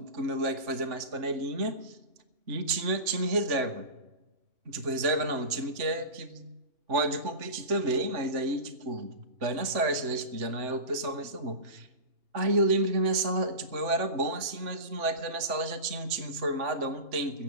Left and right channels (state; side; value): late; left; 3.4 ms